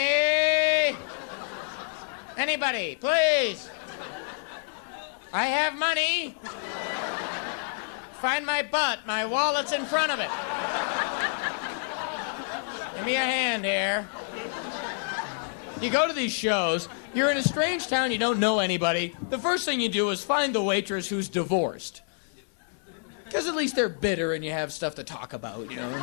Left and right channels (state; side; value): silent; right; digital silence